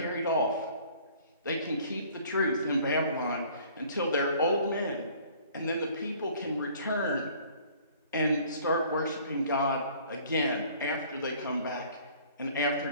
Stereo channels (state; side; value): inverted; both; correlation -0.54